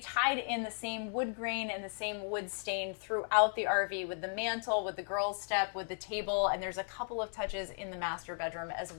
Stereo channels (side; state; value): right; silent; 54 dB below the other